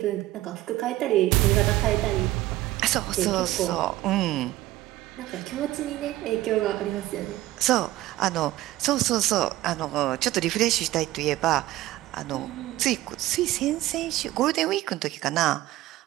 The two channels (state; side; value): quieter; left; 16.2 dB